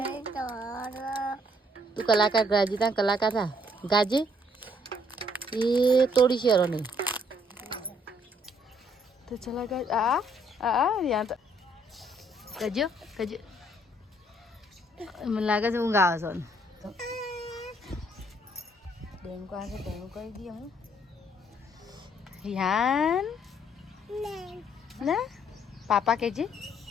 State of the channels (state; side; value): normal; both; correlation 0.66